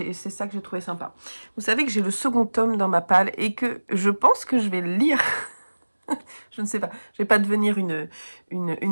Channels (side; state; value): both; inverted; correlation -1.00